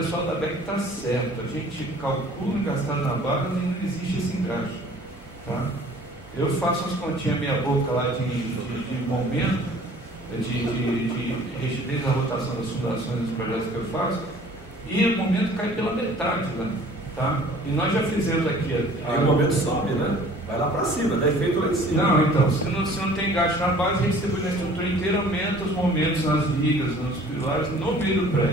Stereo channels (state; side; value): normal; both; correlation 0.51